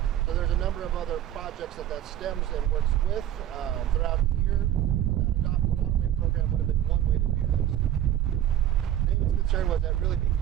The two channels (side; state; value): left; quieter; 11.7 dB